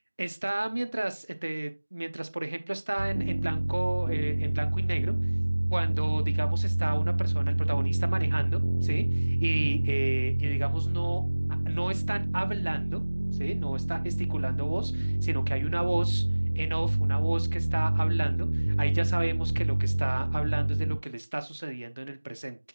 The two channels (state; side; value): inverted; both; correlation -1.00